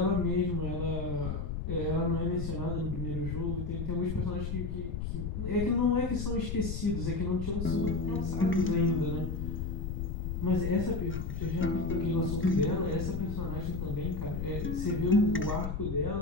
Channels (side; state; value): left; noise; rumble, 3 dB below the sound